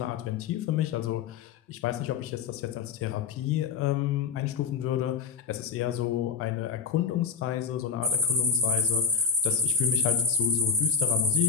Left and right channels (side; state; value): right; quieter; 6.0 dB